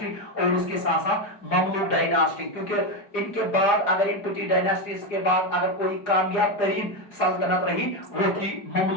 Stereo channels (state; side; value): late; right; 4.9 ms